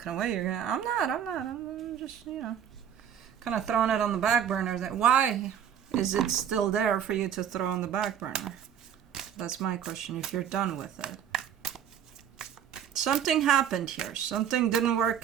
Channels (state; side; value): quieter; left; 9.1 dB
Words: away, you're going to, I'm just, you know, kind of throwing it on the back burner. Why is it still there for you to throw on the back burner? That's my question, if you're done with it. Something happened here. Something didn't work